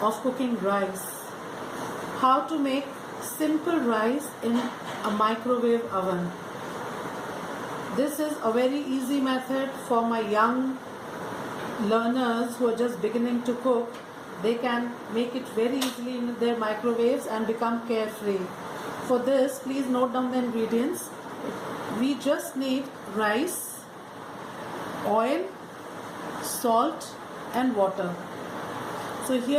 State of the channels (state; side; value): identical; both; correlation 1.00